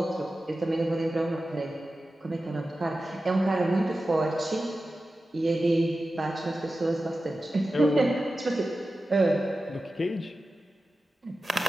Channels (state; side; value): normal; both; correlation 0.94